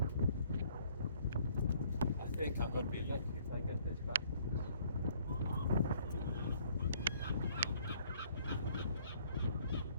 I think I'm going to be lucky if I get this back.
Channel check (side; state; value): both; inverted; correlation -0.61